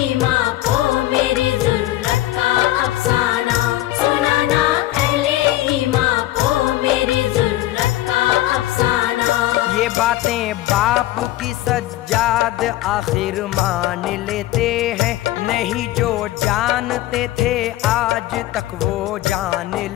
ईमान को मेरी जुर्रत का अफसाना। सुनाना अहले ईमान को मेरी जुर्रत का अफसाना। ये बातें बाप की सज्जाद आखिर मान लेते हैं, नहीं जो जानते थे आज तक वो जान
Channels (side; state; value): right; quieter; 15.5 dB